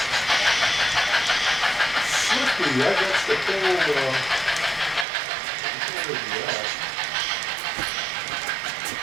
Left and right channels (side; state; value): left; drops out; at 5.1 s